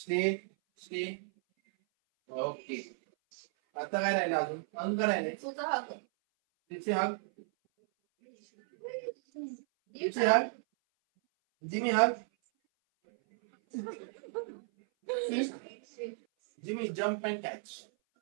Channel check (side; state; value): left; silent; 55 dB below the other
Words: Stay. Okay. आता काय राहिले अजून? अजून काय राहिले? जिप्सी हग. जिप्सी हग. जिमी हग. Jimmy, jump and catch.